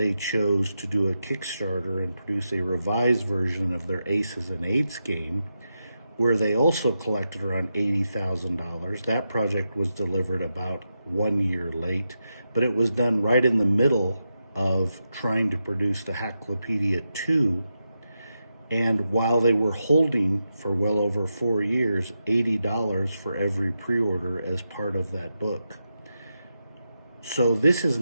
chose to do a Kickstarter and produce a revised version of their Aces and Eights game, where they also collected around $80,000. That project was delivered about 1 year late, but it was done right in the middle of trying to produce the Hacklopedia 2. And while they were holding for well over 4 years, $80 for every pre-order as part of that book. So this is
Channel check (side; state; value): both; inverted; correlation -0.88